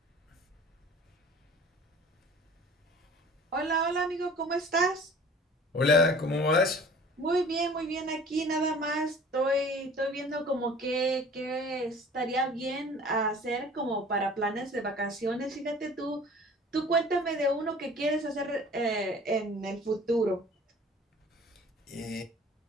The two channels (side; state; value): both; normal; correlation 0.47